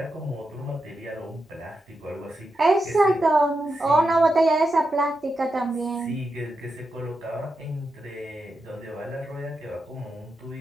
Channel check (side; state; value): both; normal; correlation 0.87